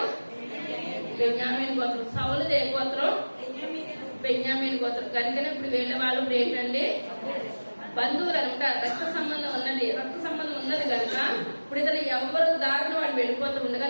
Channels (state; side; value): inverted; both; correlation -1.00